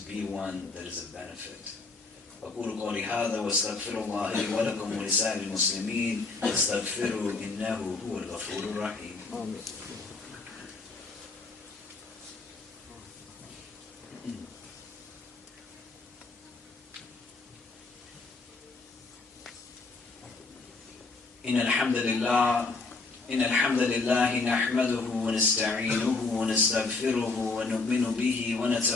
be one that is of benefit. أقول قولي هذا واستغفر الله لي ولكم ولسائر المسلمين واستغفروا إنه هو الغفور الرحيم. إن الحمد لله نحمده ونستعينه ونستغفره ونؤمن به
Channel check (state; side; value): quieter; right; 3.8 dB